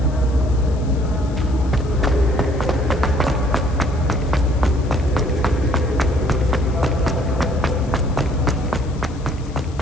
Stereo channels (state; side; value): noise; left; hiss, 24 dB below the sound